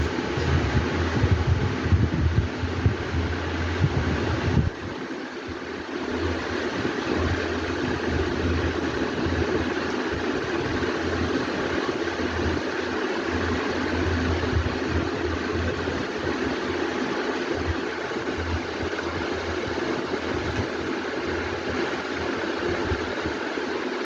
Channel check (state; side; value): identical; both; correlation 1.00